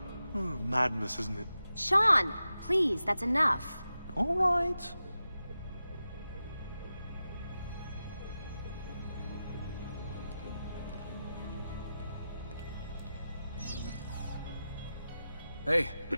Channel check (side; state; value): both; inverted; correlation -0.92